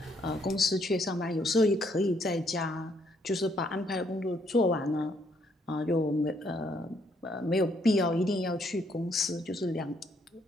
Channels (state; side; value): normal; both; correlation 0.70